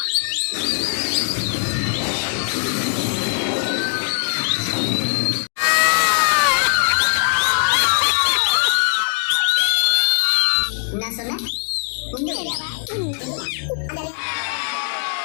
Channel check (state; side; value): silent; right; digital silence